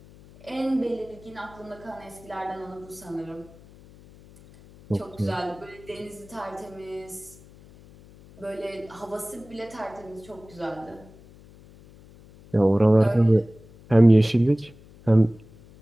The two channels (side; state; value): left; noise; hum, 23 dB below the sound